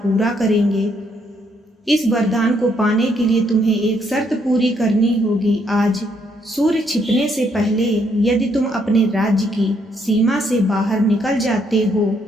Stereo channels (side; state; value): both; normal; correlation 0.72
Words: करेंगे। इस वरदान को पाने के लिए तुम्हें एक शर्त पूरी करनी होगी। आज सूर्य छिपने से पहले यदि तुम अपने राज्य की सीमा से बाहर निकल जाते हो